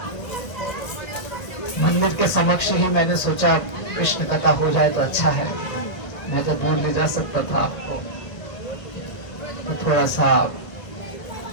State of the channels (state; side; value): late; right; 1.2 ms